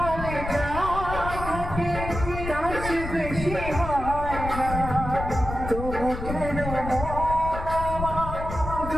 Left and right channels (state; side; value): noise; left; rumble, 7 dB below the sound